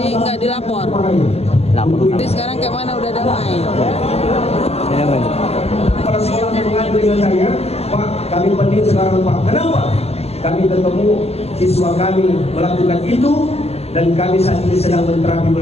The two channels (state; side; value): late; right; 0.30 ms